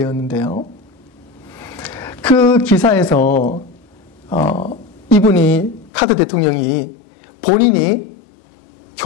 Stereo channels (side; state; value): right; drops out; at 5.9 s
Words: 그 기사에서 이분이 카터 대통령이 본인이